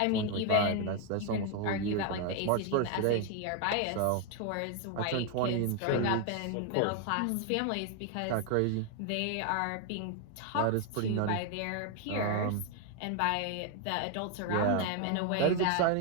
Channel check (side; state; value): both; different; correlation 0.01